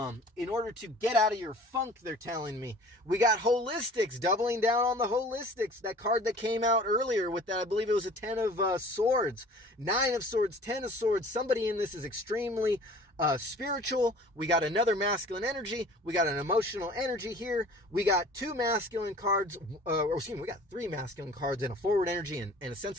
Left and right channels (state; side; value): normal; both; correlation 0.47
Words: get out of your funk, they're telling me. We got holistics, doubling down on the holistics. That card that came out earlier with that, I believe it was a 10 of swords, 9 of swords, 10 of swords. Somebody in this is extremely spiritual. We got another masculine energy. We got an emotional energy here. We got two masculine cards, we got 3 masculine cards and a forward energy and a sense